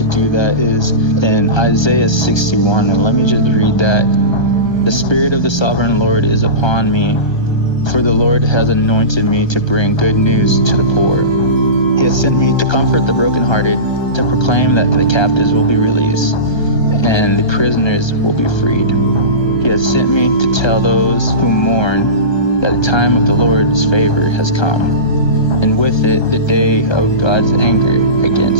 do that is in Isaiah 61. And let me just read that. "The Spirit of the Sovereign Lord is upon me, for the Lord has anointed me to bring good news to the poor. He has sent me to comfort the brokenhearted, to proclaim that the captives will be released, and the prisoners will be freed. He has sent me to tell those who mourn that the time of the Lord's favor has come, and with it the day of God's anger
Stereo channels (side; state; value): right; late; 1.3 ms